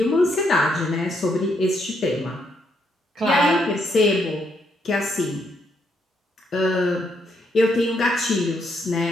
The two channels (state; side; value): normal; both; correlation 0.75